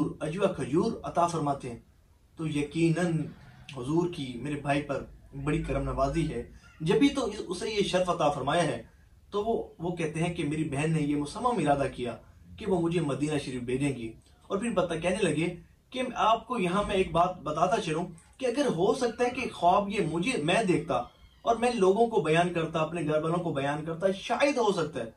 اجوا کھجور عطا فرماتے ہیں، تو یقیناً حضور کی میرے بھائی پر بڑی کرم نوازی ہے، جبھی تو اسے یہ شرف عطا فرمایا ہے۔ تو وہ کہتے ہیں کہ میری بہن نے یہ مصمم ارادہ کیا کہ وہ مجھے مدینہ شریف بھیجیں گی، اور پھر کہنے لگے کہ آپ کو یہاں میں ایک بات بتاتا چلوں کہ اگر ہو سکتا ہے کہ خواب یہ میں دیکھتا اور میں لوگوں کو بیان کرتا، اپنے گھر والوں کو بیان کرتا، شاید ہو سکتا ہے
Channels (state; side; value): identical; both; correlation 1.00